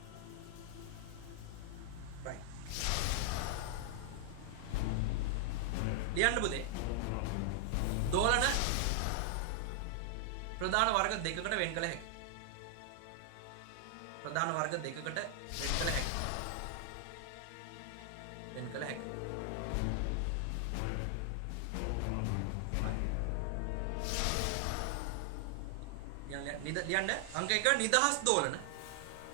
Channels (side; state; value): both; different; correlation 0.00